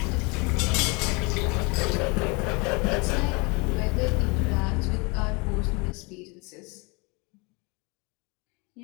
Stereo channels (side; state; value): right; quieter; 28.9 dB